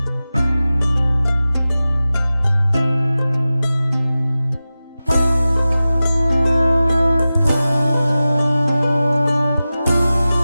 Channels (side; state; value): both; inverted; correlation -0.96